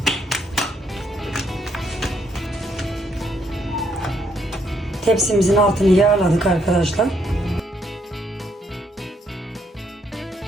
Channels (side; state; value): both; normal; correlation 0.73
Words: Tepsimizin altını yağladık arkadaşlar.